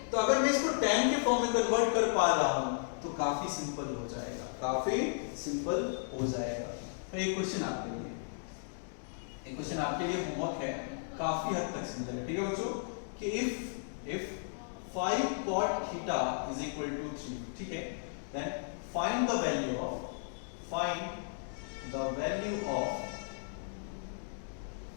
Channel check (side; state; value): right; silent; digital silence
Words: तो अगर मैं इसको tan के फॉर्म में कन्वर्ट कर पा रहा हूं तो काफी सिंपल हो जाएगा, काफी सिंपल हो जाएगा। तो एक क्वेश्चन आपके लिए, एक क्वेश्चन आपके लिए होमवर्क है, काफी हद तक सिंपल है, ठीक है बच्चों, कि if 5 cot theta is equal to 3, ठीक है, then find the value of 5